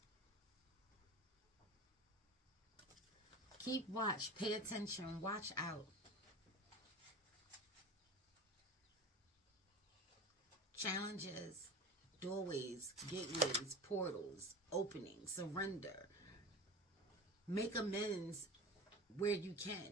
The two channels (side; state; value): both; normal; correlation 0.31